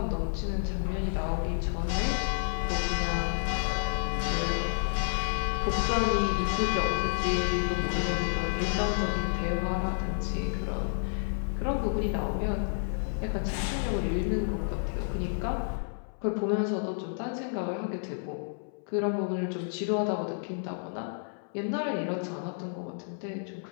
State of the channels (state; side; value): silent; right; 58 dB below the other